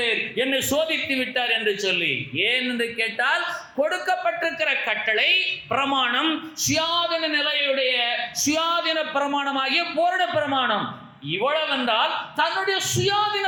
என்னை சோதித்து விட்டார் என்று சொல்லி. ஏன் என்று கேட்டால், கொடுக்கப்பட்டிருக்கிற கட்டளை பிரமாணம் சுயாதீன நிலையுடைய சுயாதீன பிரமாணமாகிய பூரண பிரமாணம். இவ்வளவென்றால் தன்னுடைய சுயாதீன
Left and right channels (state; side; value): identical; both; correlation 1.00